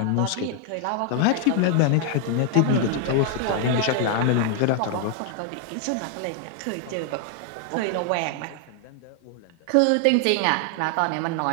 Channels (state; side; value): different; both; correlation 0.00